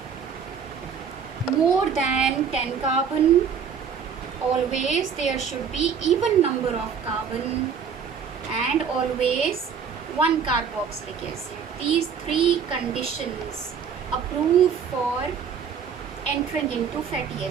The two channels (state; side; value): quieter; left; 6.8 dB